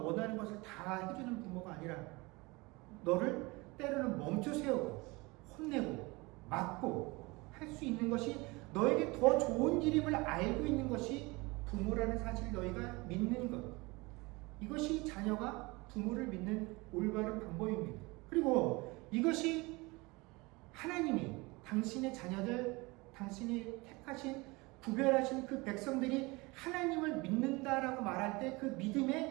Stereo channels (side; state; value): left; quieter; 24.4 dB